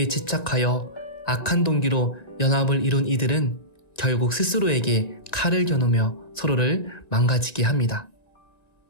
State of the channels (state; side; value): late; right; 1.9 ms